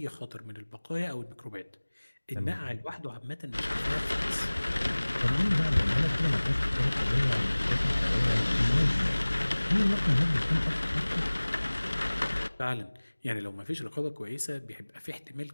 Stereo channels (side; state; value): both; inverted; correlation -1.00